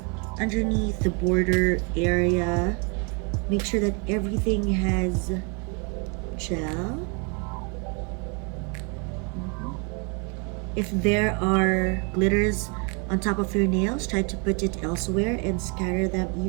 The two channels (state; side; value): quieter; left; 34.4 dB